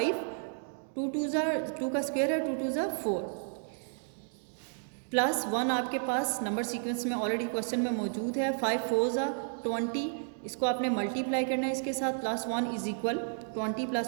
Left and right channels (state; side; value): silent; left; digital silence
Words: 2 2 जा 2 का स्क्वेयर है, 2 2 जा 4 प्लस 1 आपके पास नंबर सीक्वेंस में ऑलरेडी क्वेश्चन में मौजूद है। 5 4 जा 20, इसको आपने मल्टीप्लाई करना है इसके साथ, प्लस 1 इज इक्वल 20